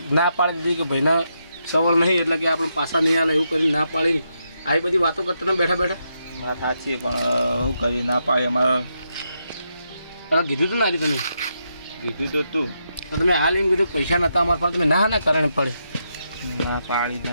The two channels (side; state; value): both; inverted; correlation -0.82